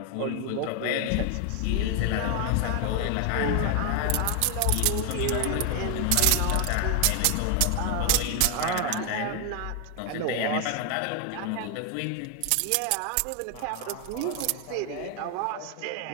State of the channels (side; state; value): both; different; correlation 0.01